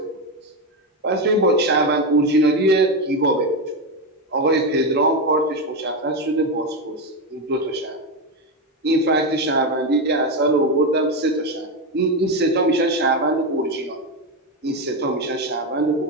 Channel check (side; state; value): both; normal; correlation 0.12